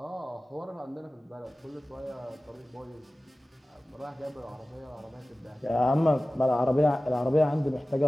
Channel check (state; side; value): normal; both; correlation 0.97